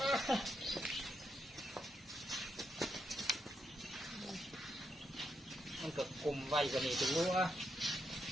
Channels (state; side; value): normal; both; correlation 0.82